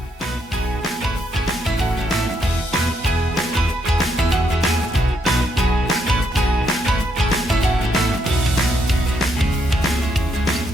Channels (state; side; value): normal; both; correlation 0.76